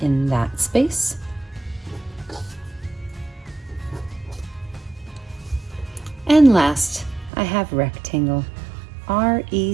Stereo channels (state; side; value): drops out; left; at 7.3 s